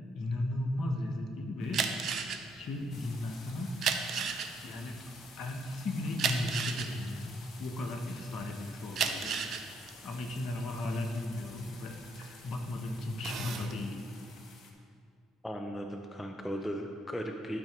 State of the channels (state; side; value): normal; both; correlation 0.73